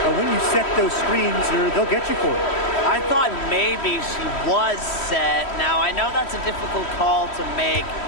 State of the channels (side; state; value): right; late; 3.1 ms